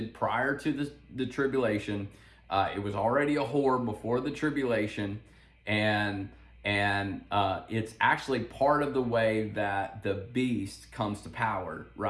prior to the tribulation. It was already a whore before the tribulation, and it's actually part of the way that the beast comes to power,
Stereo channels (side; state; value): both; identical; correlation 1.00